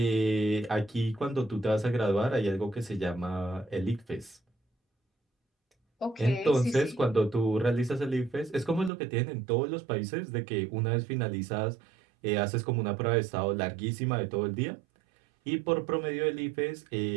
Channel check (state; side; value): drops out; left; at 8.9 s